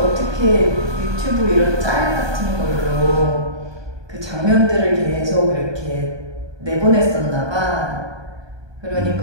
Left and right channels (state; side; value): late; left; 1.2 ms